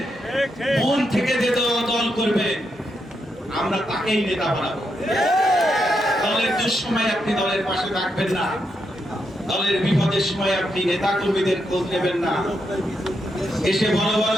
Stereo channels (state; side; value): normal; both; correlation 0.82